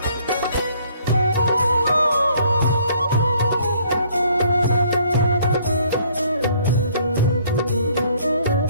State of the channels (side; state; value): both; inverted; correlation -0.62